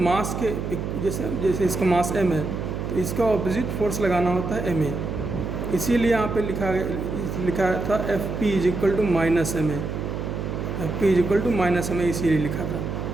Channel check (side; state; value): right; noise; hum, 4 dB below the sound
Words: के जैसे इसका मास m है तो इसका ऑपोजिट फोर्स लगाना होता है ma। इसीलिए यहाँ पे लिखा था f p is equal to minus m a, f p is equal to minus m a इसीलिए लिखा था।